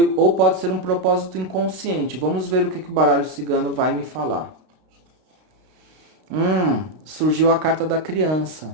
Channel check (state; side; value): late; left; 32 ms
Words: pode ser um propósito inconsciente. Vamos ver o que o baralho cigano vai me falar. Surgiu a carta da